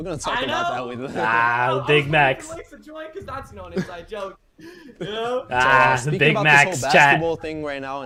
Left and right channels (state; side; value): identical; both; correlation 1.00